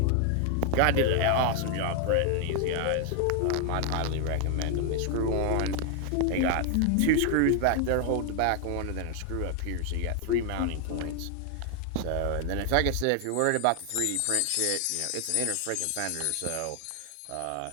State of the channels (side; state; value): both; different; correlation 0.00